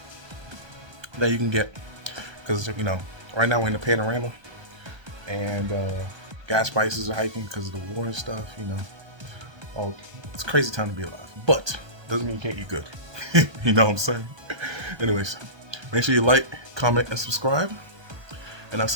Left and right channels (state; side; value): late; left; 1.2 ms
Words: that you can get because right now we're in the panorama and gas prices are hiking because of the war and stuff. Oh, it's a crazy time to be alive, but doesn't mean you can't eat good. You know what I'm saying? Anyways, make sure you like, comment, and subscribe. And I'll